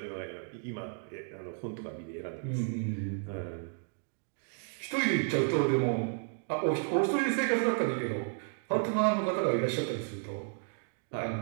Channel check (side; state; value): left; silent; 56 dB below the other